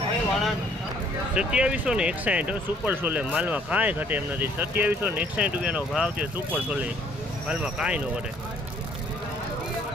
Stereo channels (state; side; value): normal; both; correlation 0.61